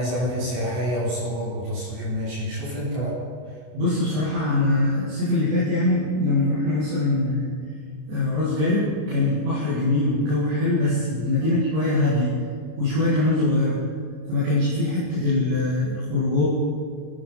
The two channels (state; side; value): late; left; 32 ms